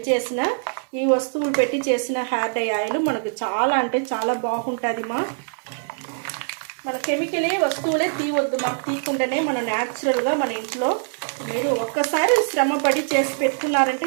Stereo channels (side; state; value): left; silent; 60 dB below the other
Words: చేసిన ఈ వస్తువులు పెట్టి చేసిన హెయిర్ డై ఆయిల్ మనకు చాలా అంటే చాలా బాగుంటుంది మన కెమికలే వస్తువులే తీయవద్దు తీయకుండానే మనం న్యాచురల్గా మన ఇంట్లో మీరు ఒక్కసారి శ్రమపడి చేసి